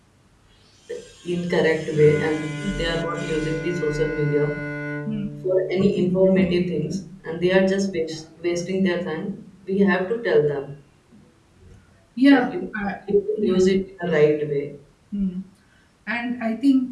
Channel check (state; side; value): identical; both; correlation 1.00